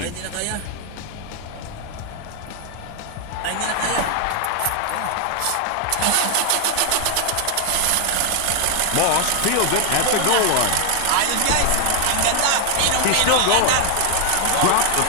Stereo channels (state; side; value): different; both; correlation 0.00